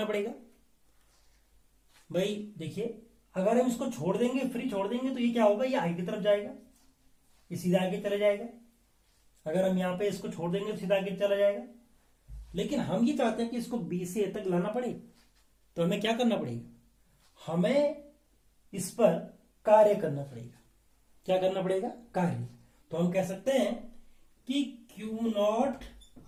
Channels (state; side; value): identical; both; correlation 1.00